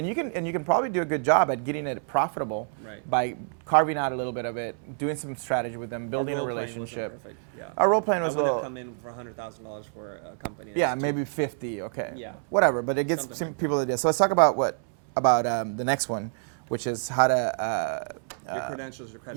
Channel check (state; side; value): silent; left; 60 dB below the other